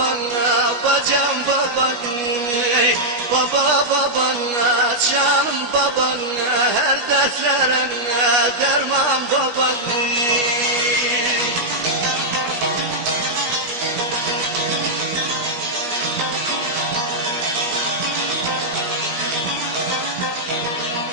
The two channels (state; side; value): late; left; 17 ms